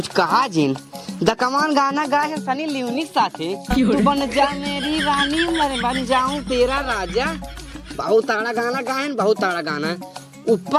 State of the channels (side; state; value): both; identical; correlation 1.00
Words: कहा जिन द कमान गाना गाए है सनी लियोनी साथे। तू बन जा मेरी रानी मैं बन जाऊं तेरा राजा। बहुत ताड़ा गाना गाए, बहुत ताड़ा गाना।